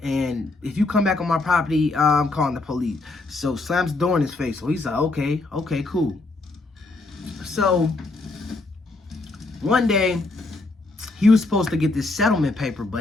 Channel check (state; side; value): quieter; right; 3.3 dB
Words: and if you come back on my property, I'm calling the police. So slams the door in his face. So he's like, okay, cool. So one day, he was supposed to get this settlement paper,